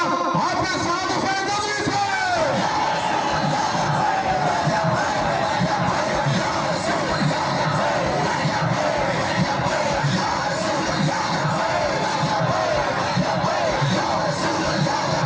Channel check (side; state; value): both; identical; correlation 1.00